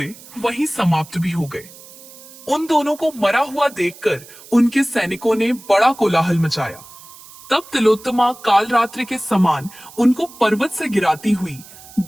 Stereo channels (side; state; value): right; noise; hiss, 20 dB below the sound